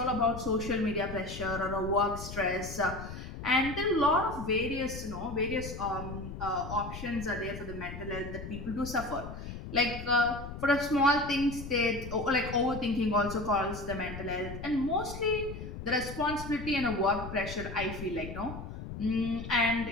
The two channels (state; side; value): noise; left; rumble, 9 dB below the sound